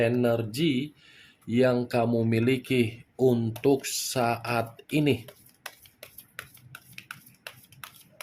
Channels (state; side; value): identical; both; correlation 1.00